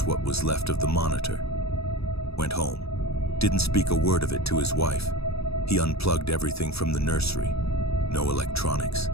what was left of the monitor. Went home. Didn't speak a word of it to his wife. He unplugged everything from the nursery. No electronics,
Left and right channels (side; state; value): right; late; 0.78 ms